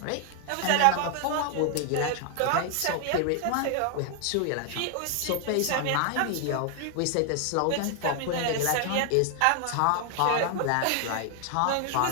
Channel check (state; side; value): different; both; correlation 0.00